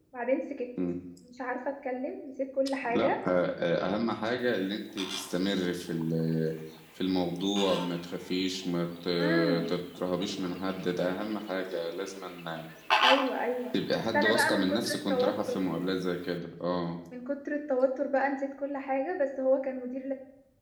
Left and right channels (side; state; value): both; identical; correlation 1.00